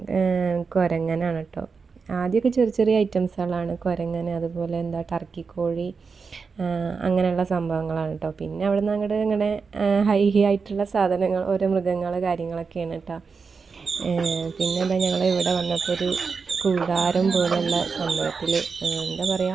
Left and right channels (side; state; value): left; quieter; 5.1 dB